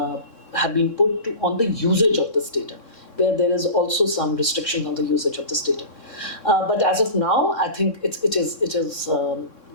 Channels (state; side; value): late; right; 3.6 ms